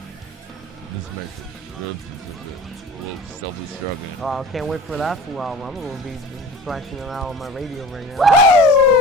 This makes good. We'll still be struggling. Oh, I can't wait for that full album. I'm gonna be flashing it out on my radio right now.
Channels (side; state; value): both; normal; correlation 0.40